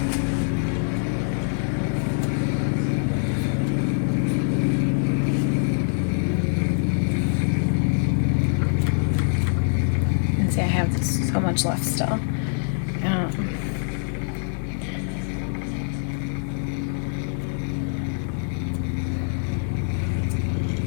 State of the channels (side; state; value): right; silent; 62 dB below the other